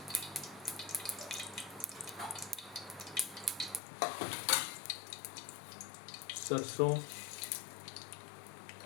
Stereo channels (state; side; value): drops out; right; at 3.8 s